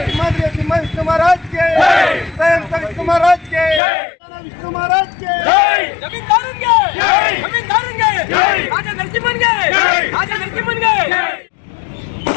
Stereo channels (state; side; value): drops out; right; at 3.8 s